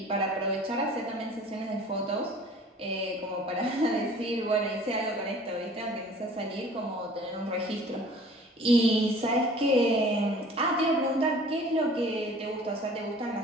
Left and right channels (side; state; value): both; normal; correlation 0.49